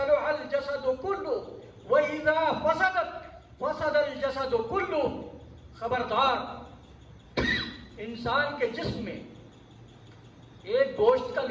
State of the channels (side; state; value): both; identical; correlation 1.00